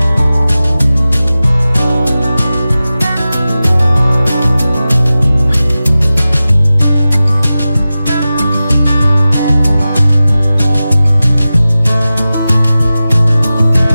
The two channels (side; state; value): both; inverted; correlation -0.95